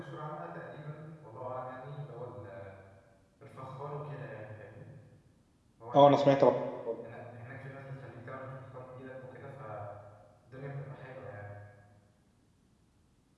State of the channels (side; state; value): both; identical; correlation 1.00